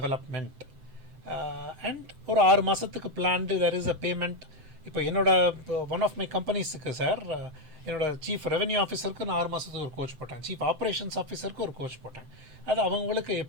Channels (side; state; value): left; late; 7.8 ms